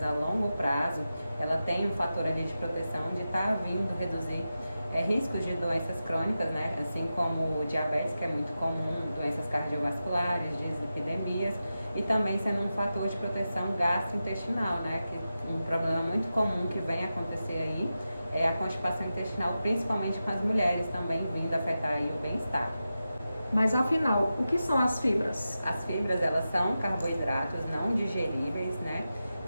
a longo prazo, ela tem um fator ali de proteção de estar vindo reduzir riscos de doenças crônicas, né? Assim como o diabetes, que é muito comum, doenças cardiovasculares, dislipidemias, e também sendo um fator de proteção gastrointestinal, né? Que um problema muito comum que vem acontecer aí é a constipação intestinal, principalmente com as mulheres, também vindo afetar aí o bem-estar. Mas afinal, o que são as fibras? As fibras, elas são carboidratos não digeríveis, né?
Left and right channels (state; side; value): inverted; both; correlation -0.92